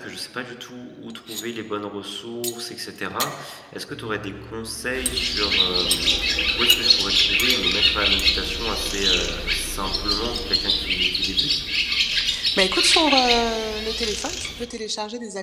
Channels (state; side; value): identical; both; correlation 1.00